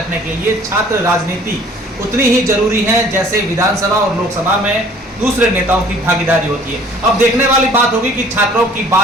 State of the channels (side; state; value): both; normal; correlation 0.53